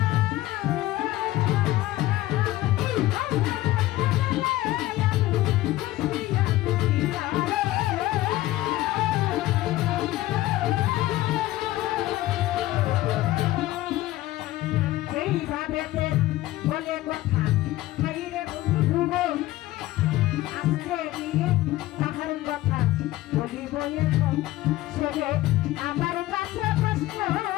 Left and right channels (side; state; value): right; quieter; 16.4 dB